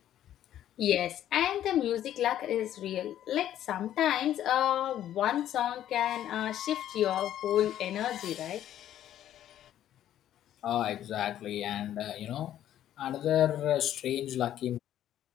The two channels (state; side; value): quieter; right; 11.6 dB